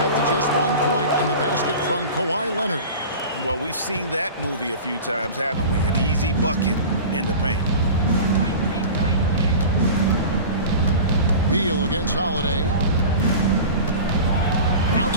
to just 1 point on the basket from Kawhi Leonard. Well, we've seen that movie a few times, haven't we? An easy bucket in the paint. Beal against Holiday.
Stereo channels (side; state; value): both; inverted; correlation -0.35